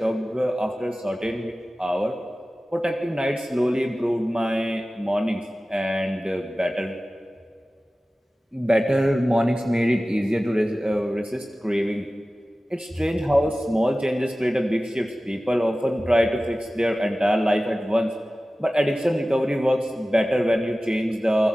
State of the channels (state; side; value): normal; both; correlation 0.96